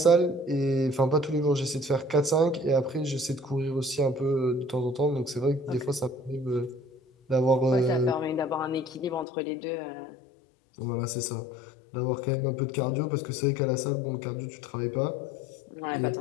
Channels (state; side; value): drops out; right; at 9.2 s